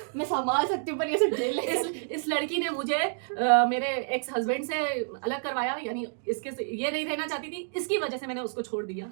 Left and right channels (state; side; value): silent; left; digital silence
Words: मैं संभाल सकती हूँ पर ये सब जेल इस लड़की ने मुझे मेरे एक्स हस्बैंड से अलग करवाया, यानी इसके ये नहीं रहना चाहती थी, इसकी वजह से मैंने उसको छोड़ दिया।